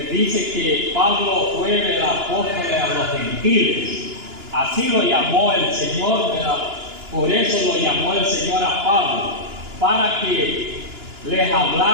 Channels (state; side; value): late; left; 2.9 ms